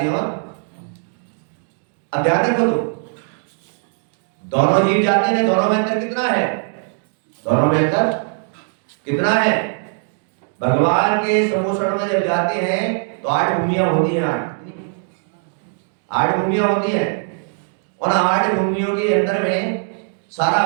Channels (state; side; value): silent; left; digital silence